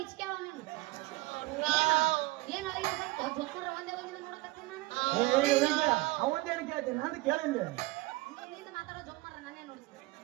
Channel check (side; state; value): left; quieter; 21.3 dB